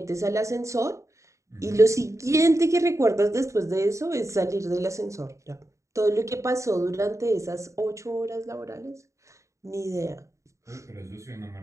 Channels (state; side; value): late; left; 0.15 ms